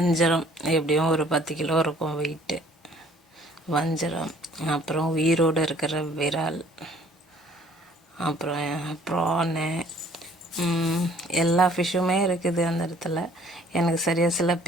எப்படியும் ஒரு 10 கிலோ இருக்கும் வெயிட்டு. வஞ்சரம், அப்புறம் உயிரோடு இருக்கிற விரால், அப்புறம் ப்ரானு, எல்லா ஃபிஷ்ஷுமே இருக்குது அந்த இடத்துல. எனக்கு சரியாக சில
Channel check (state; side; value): normal; both; correlation 0.57